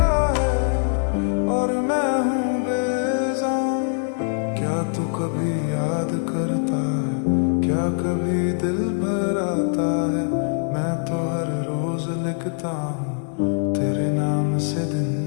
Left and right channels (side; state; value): right; silent; digital silence